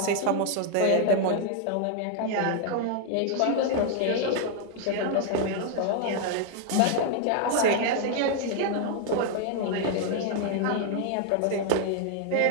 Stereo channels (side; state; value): both; different; correlation 0.00